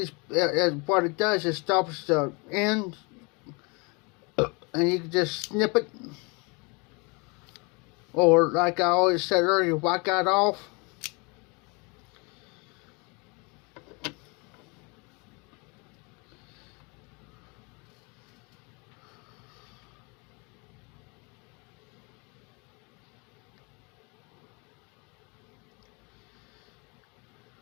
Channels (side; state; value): right; quieter; 30.2 dB